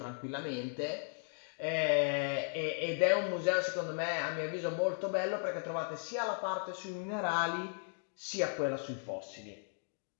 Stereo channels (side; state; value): right; silent; 54 dB below the other